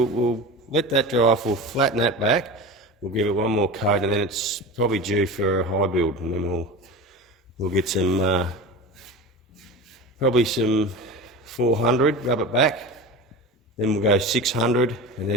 we'll let that dry off, we'll flatten that back, we'll give it one more coat, and then it's probably due for a high build, and then we'll get some, probably some 400, rub it back, then we'll go 600, and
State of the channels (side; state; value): both; normal; correlation 0.30